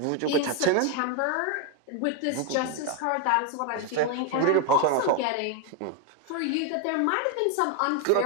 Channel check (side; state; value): both; different; correlation 0.01